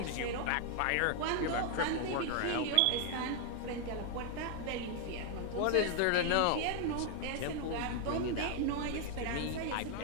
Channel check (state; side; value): different; both; correlation 0.00